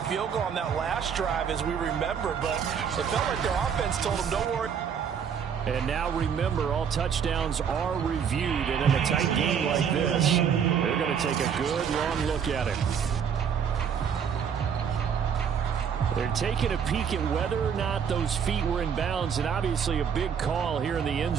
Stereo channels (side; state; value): left; quieter; 7.4 dB